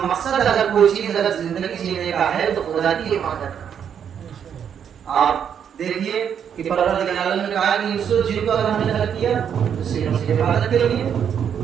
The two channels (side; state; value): left; quieter; 8.2 dB